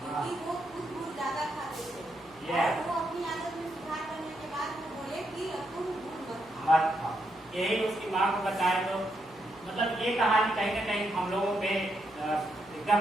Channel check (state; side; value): noise; left; hum, 27 dB below the sound